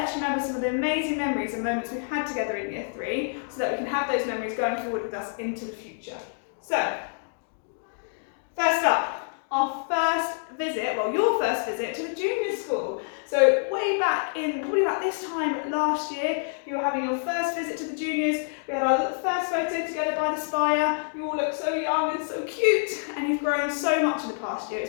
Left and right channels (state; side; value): silent; right; digital silence